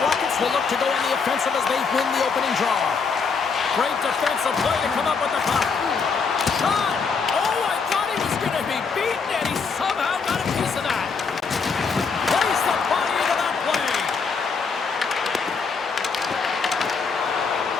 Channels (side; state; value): right; quieter; 5.2 dB